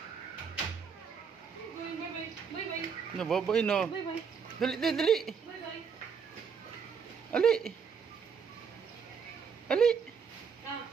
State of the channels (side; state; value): left; quieter; 6.4 dB